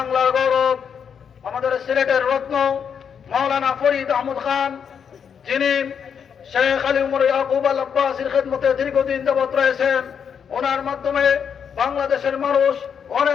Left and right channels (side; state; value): right; quieter; 7.3 dB